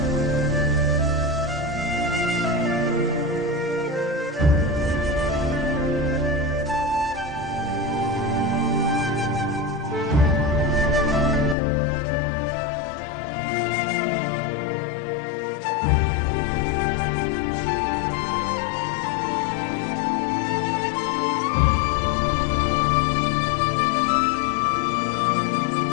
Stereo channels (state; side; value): drops out; right; at 11.6 s